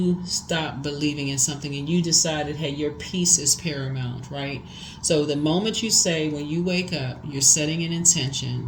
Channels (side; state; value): both; identical; correlation 1.00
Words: stopped believing in something and you decided, hey, your peace is paramount, right? So the moment you say, when you wake up, you're setting an